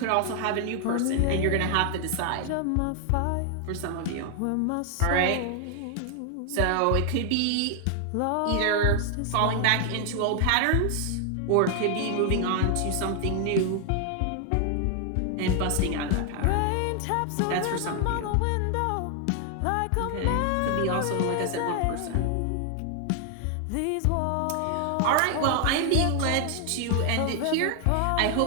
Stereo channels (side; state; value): both; different; correlation 0.00